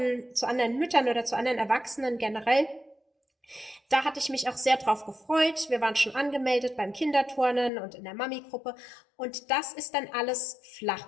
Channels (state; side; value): drops out; right; at 7.7 s